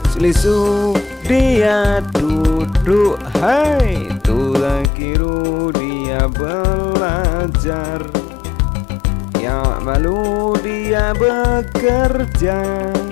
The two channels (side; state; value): right; drops out; at 4.9 s